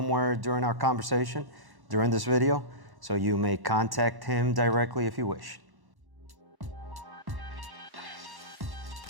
during our conversation during this video, so you may contact him directly if you wish.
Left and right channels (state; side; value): late; left; 1.1 ms